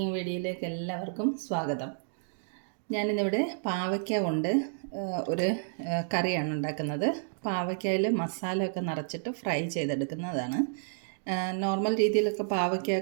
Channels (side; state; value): left; silent; digital silence